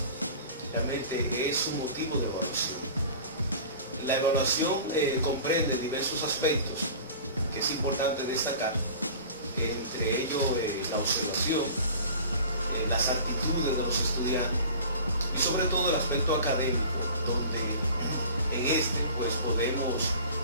realmente es un motivo de evaluación. La evaluación comprende diversos aspectos que es importante destacar, entre ellos la observación, las actitudes de los estudiantes y sobre todo el aspecto académico, donde en este pues podemos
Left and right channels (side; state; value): both; inverted; correlation -0.41